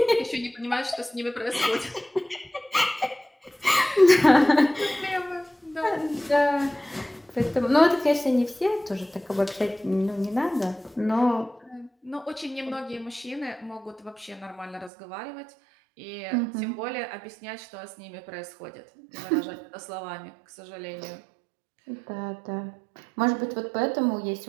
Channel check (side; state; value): left; drops out; at 14.9 s